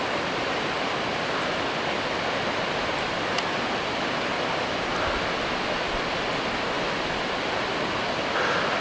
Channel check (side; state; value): both; identical; correlation 1.00